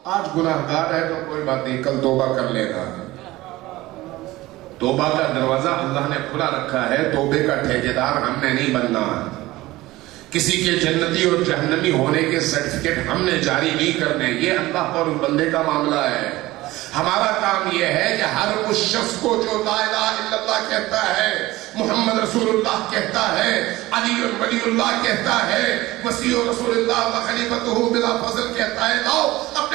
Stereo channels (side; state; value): left; quieter; 18.2 dB